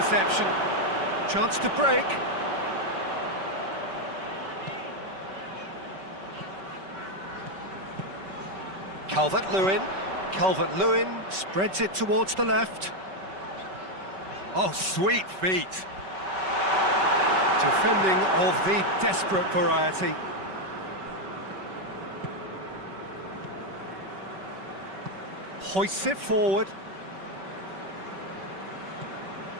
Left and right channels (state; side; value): late; left; 5.2 ms